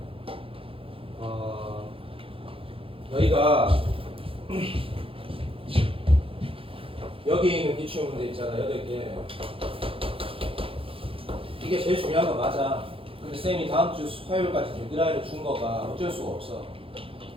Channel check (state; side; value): late; left; 0.27 ms